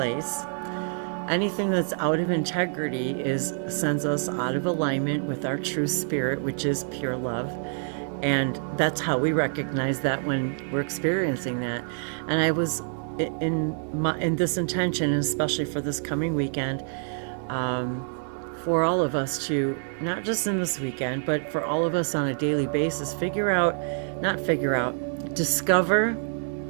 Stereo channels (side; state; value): left; silent; 60 dB below the other